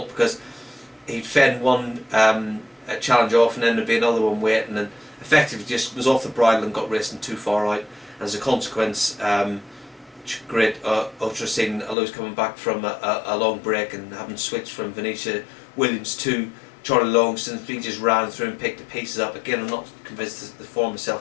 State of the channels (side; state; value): right; drops out; at 12.0 s